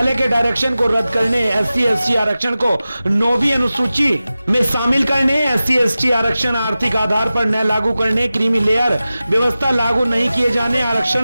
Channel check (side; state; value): both; inverted; correlation -0.95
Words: के डायरेक्शन को रद्द करने, SC/ST आरक्षण को 9वीं अनुसूची में शामिल करने, SC/ST आरक्षण आर्थिक आधार पर न लागू करने, क्रीमी लेयर व्यवस्था लागू नहीं किए जाने,